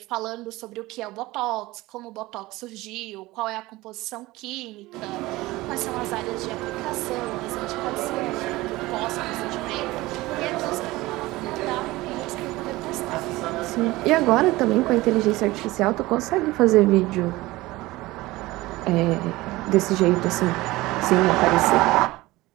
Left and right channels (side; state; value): left; quieter; 19.4 dB